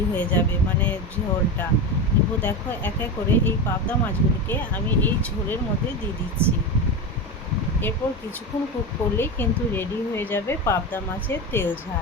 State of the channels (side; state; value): both; normal; correlation 0.20